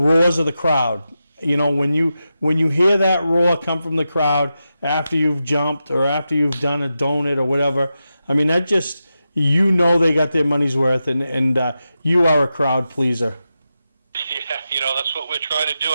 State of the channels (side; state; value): both; inverted; correlation -0.90